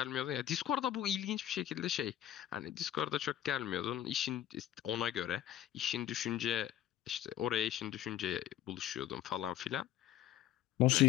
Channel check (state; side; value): quieter; right; 11.8 dB